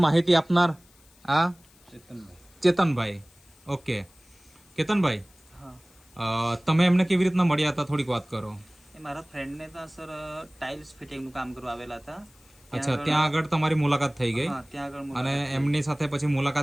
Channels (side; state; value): left; noise; hiss, 29 dB below the sound